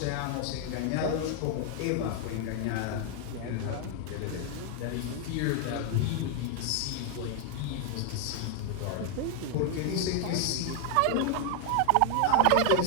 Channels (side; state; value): both; different; correlation 0.00